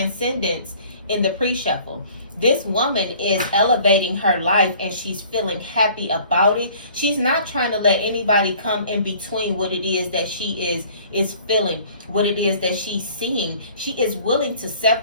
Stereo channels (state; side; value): inverted; both; correlation -0.52